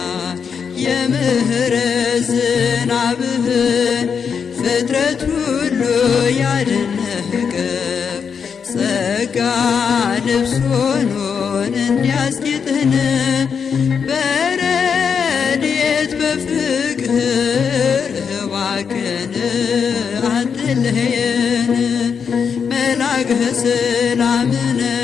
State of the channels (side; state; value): right; quieter; 6.5 dB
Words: የምህረት ዝናብህን ፍጥረት ሁሉ ያደነቀ ጸጋ ልብስ ሆኖን እንዲያስጌጥህን በረድኤት በፍቅር እባክህን አትለየን። መልአከ ሰላምነ